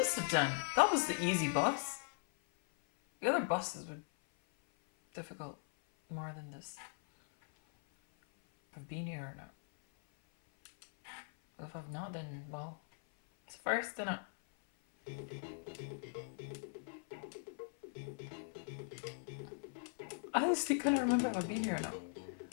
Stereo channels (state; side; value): silent; right; 51 dB below the other